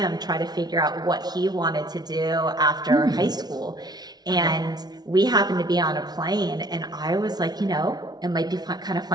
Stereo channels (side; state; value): left; late; 0.19 ms